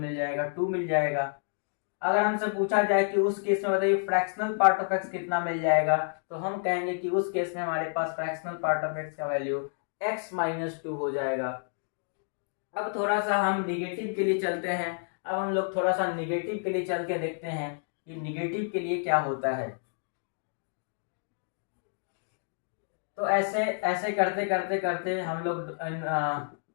जाएगा 2 मिल जाएगा। अगर हमसे पूछा जाए कि उस केस में बताइए फ्रैक्शनल पार्ट ऑफ x कितना मिल जाएगा, तो हम कहेंगे कि उस केस में हमारे पास फ्रैक्शनल पार्ट ऑफ x का वैल्यू x माइनस 2 हो जाएगा। अब थोड़ा सा हम निगेटिव के लिए चलते हैं। अब हम लोग थोड़ा सा निगेटिव के लिए चल के देखते हैं कि निगेटिव के लिए क्या होता है। तो ऐसे ऐसे करते करते करते हम लोग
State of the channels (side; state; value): right; silent; digital silence